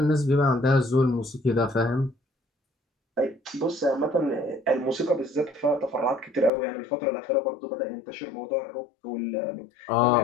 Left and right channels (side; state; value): right; drops out; at 6.5 s